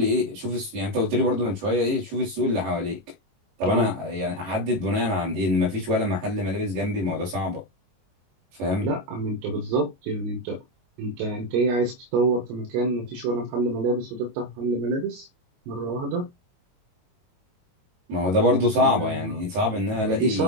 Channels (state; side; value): late; left; 22 ms